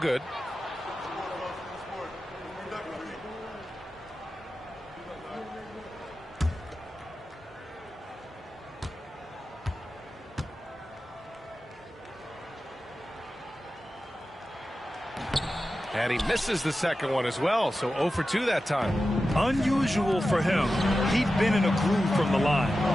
And he misses the second one as well, so 0 for 2 that time. Unusual for him. He'd been in a groove from the line.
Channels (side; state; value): both; normal; correlation 0.93